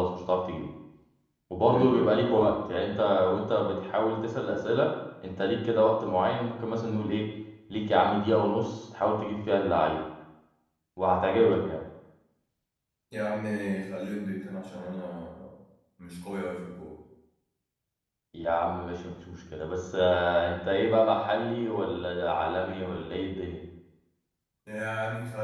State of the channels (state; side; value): identical; both; correlation 1.00